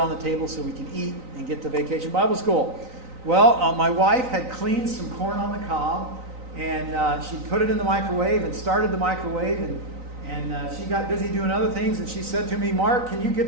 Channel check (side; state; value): left; late; 3.9 ms